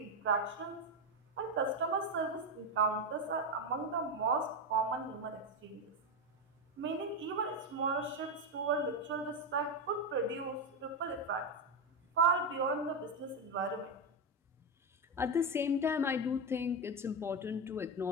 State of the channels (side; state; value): both; normal; correlation 0.10